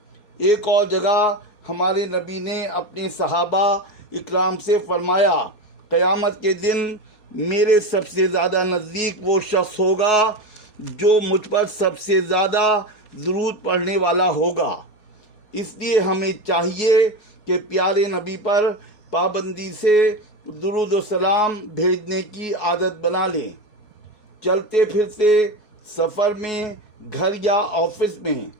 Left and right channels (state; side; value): late; right; 4.7 ms